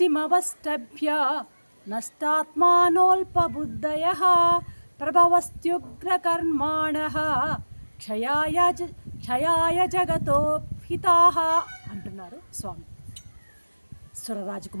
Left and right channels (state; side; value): inverted; both; correlation -1.00